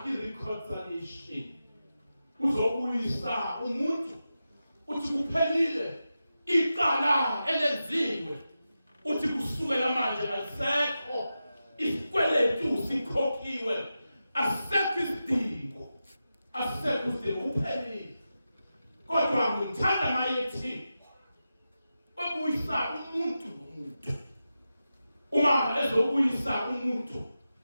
i-reconciliation, uzobuyisa umuntu. Uthi kuphelile, iqala elenziwe, uthi kusukela manje alisekho isikweletu, sikhokhiwe, asekho isidingo, asekho isidingo, uphelile. Kodwa ngithanda mayethi ubuyisa umuntu nomuntu. Uma ezobuyisa umuntu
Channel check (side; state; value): both; inverted; correlation -0.91